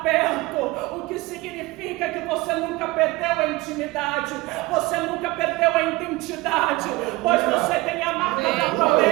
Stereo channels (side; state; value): left; quieter; 21.2 dB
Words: perto. O que significa que você nunca perdeu a intimidade. Você nunca perdeu a identidade. Pois você tem a marca da